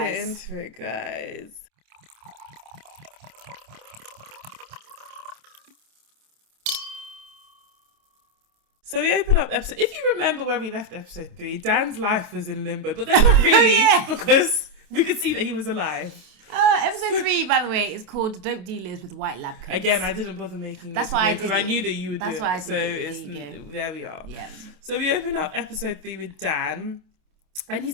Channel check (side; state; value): left; late; 27 ms